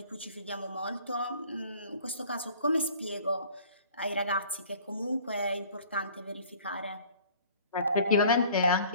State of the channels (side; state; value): both; inverted; correlation -0.51